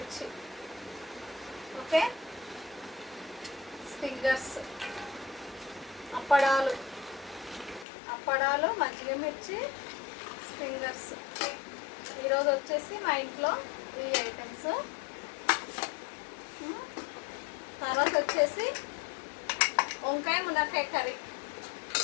ఓకే, ఫింగర్స్, అప్పడాలు, మజ్జిగ మిర్చి, ఫింగర్స్. ఈరోజు వచ్చేసి మా ఇంట్లో ఈ ఐటమ్స్. తర్వాత వచ్చేసి వంకాయ మునక్కాయ కర్రీ.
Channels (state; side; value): drops out; right; at 7.9 s